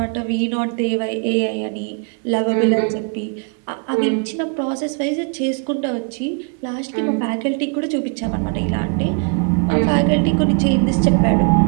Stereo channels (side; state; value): left; quieter; 38.0 dB